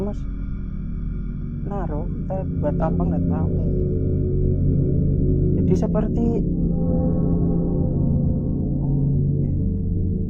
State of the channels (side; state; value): both; identical; correlation 1.00